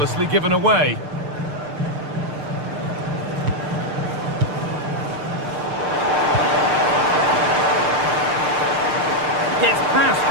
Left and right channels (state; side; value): late; left; 6.7 ms